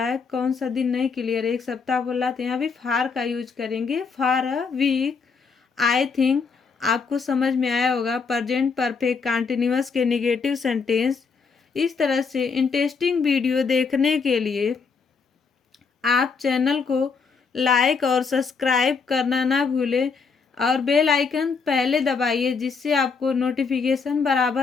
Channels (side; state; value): right; quieter; 5.2 dB